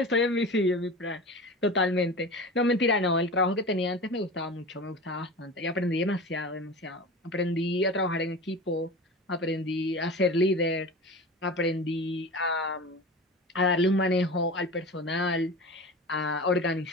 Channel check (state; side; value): normal; both; correlation 0.32